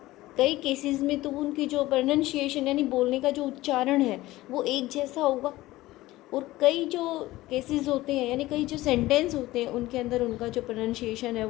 कई केसेस में तो उनकी जो प्रोनाउंसिएशन यानी बोलने का जो उच्चारण है वो एक जैसा होगा। और कई जो केसेस होते हैं यानी कई जो सेंटेंस होते हैं उनके अंदर उनका जो प्रोनाउंसिएशन है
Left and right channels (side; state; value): right; quieter; 17.6 dB